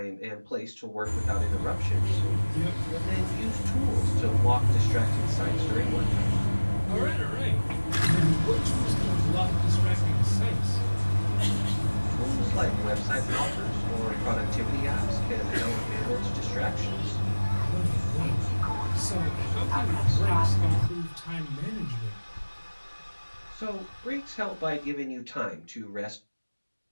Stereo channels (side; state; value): both; inverted; correlation -1.00